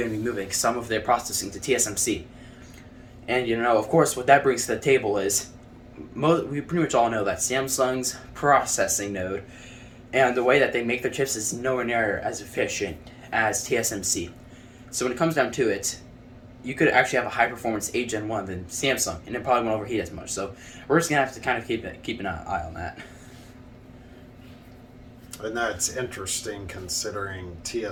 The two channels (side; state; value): both; identical; correlation 1.00